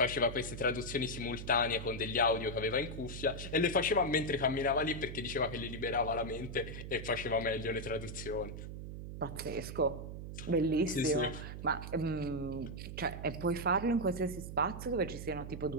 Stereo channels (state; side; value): noise; right; hum, 8 dB below the sound